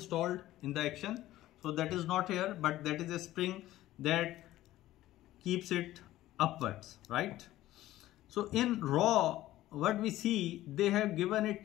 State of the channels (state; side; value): quieter; right; 15.1 dB